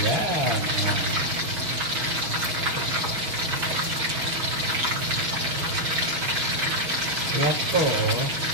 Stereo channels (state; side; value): late; left; 6.4 ms